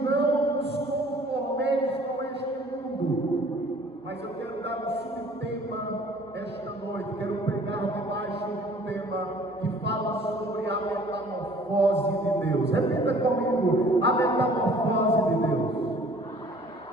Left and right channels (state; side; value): normal; both; correlation 0.53